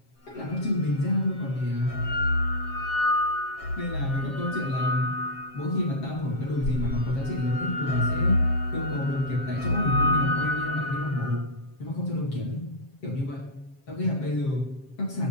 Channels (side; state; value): right; late; 7.5 ms